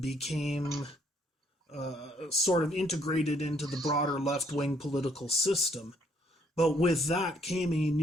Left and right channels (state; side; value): normal; both; correlation 0.68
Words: became sort of integrated into the broader left-wing political system. But with that came a